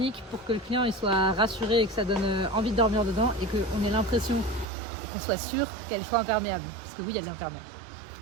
pour que le client il soit rassuré et que ça donne envie de dormir dedans et qu'on ait l'impression qu'on soit sûr qu'elle soit imperméable. Parce que oui, elle est imperméable.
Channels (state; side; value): drops out; left; at 4.7 s